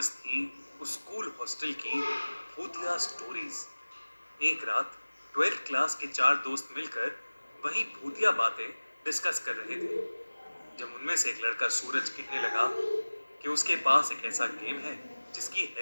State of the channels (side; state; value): both; inverted; correlation -1.00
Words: थी उस स्कूल हॉस्टल की भूतिया स्टोरीज। एक रात 12th क्लास के 4 दोस्त मिलकर वही भूतिया बातें डिस्कस कर रहे थे, जब उनमें से एक लड़का सूरज कहने लगा कि उसके पास एक ऐसा गेम है जिसकी